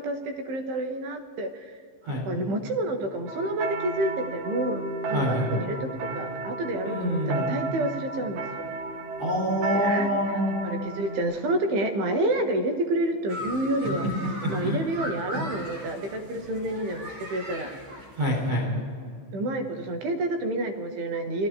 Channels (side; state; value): left; late; 15 ms